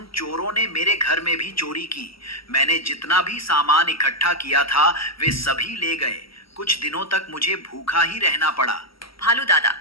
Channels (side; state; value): right; late; 0.75 ms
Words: चोरों ने मेरे घर में भी चोरी की। मैंने जितना भी सामान इकट्ठा किया था वे सभी ले गए। कुछ दिनों तक मुझे भूखा ही रहना पड़ा। भालू दादा,